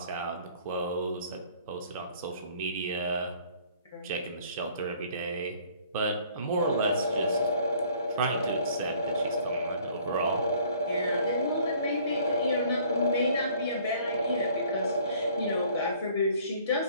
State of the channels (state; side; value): inverted; both; correlation -0.56